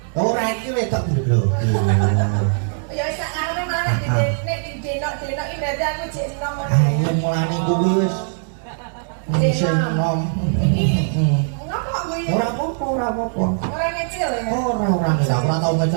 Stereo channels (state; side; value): silent; left; digital silence